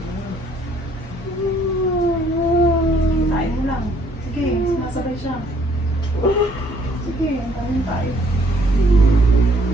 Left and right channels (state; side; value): normal; both; correlation 0.63